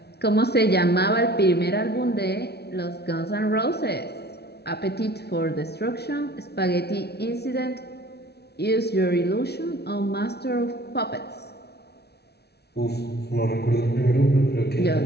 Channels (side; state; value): right; late; 0.48 ms